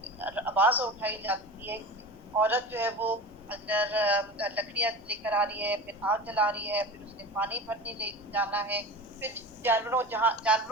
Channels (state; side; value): normal; both; correlation 0.32